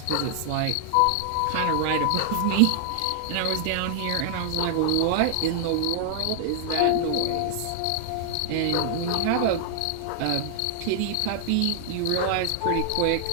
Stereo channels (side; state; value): both; different; correlation -0.01